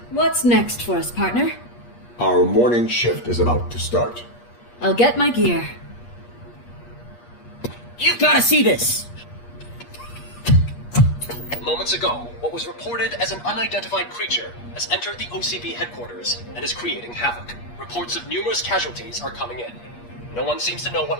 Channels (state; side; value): late; right; 8.4 ms